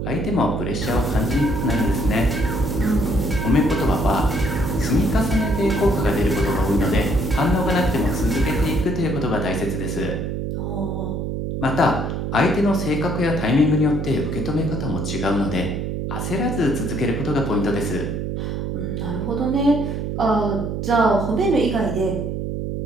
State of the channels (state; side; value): noise; right; hum, 3 dB below the sound